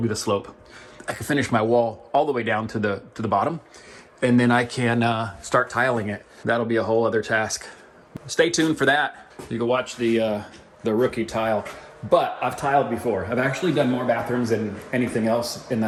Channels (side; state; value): both; identical; correlation 1.00